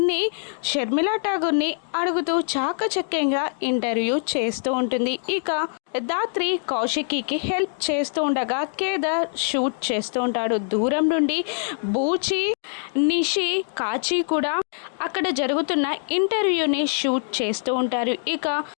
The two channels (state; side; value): silent; right; digital silence